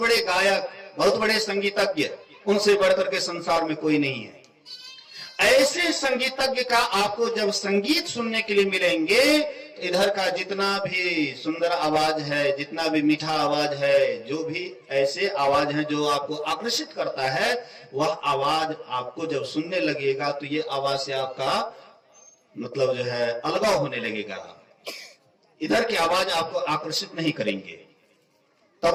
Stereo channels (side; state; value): both; identical; correlation 1.00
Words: गायक, बहुत बड़े संगीतज्ञ, उनसे बढ़कर के संसार में कोई नहीं है। ऐसे संगीतज्ञ का आपको जब संगीत सुनने के लिए मिलेंगे, तो इधर का जितना भी सुंदर आवाज है, जितना भी मीठा आवाज है, जो भी ऐसे आवाज है जो आपको आकर्षित करता है, वह आवाज आपको जब सुनने लगेगा, तो ये आवाज से आपका मतलब जो है अलगाव होने लगेगा। इधर की आवाज आपको आकर्षित नहीं करेंगे।